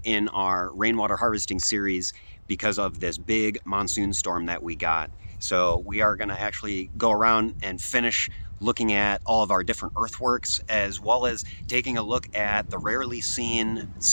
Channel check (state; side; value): inverted; both; correlation -1.00